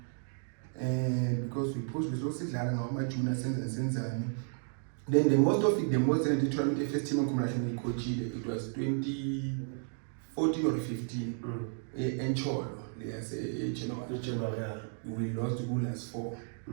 and because we pushed this also my junior sensani. Then the most in the tournament first team combination coach it was 2014 or 15 in Cholo. Yes, we lost the goal as 4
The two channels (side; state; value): left; silent; 56 dB below the other